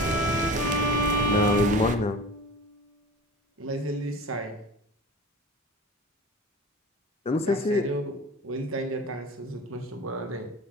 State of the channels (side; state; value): both; normal; correlation 0.37